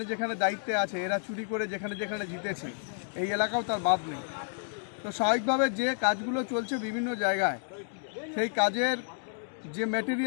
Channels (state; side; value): silent; right; digital silence